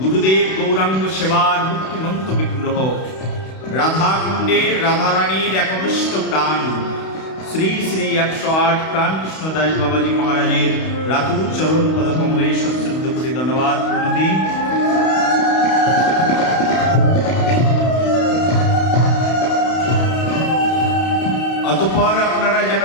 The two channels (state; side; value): late; right; 31 ms